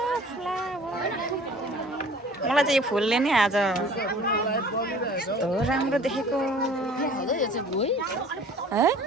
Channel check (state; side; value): normal; both; correlation 0.48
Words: मलाई चाहिँ यो फुलले नै आज कस्तो राम्रो देखेको है